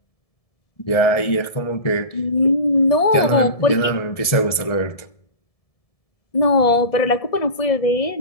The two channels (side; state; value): right; late; 1.7 ms